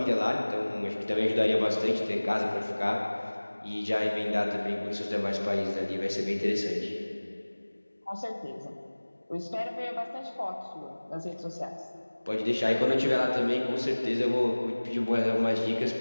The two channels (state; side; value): inverted; both; correlation -1.00